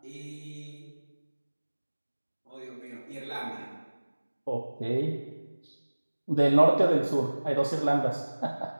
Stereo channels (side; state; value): both; inverted; correlation -1.00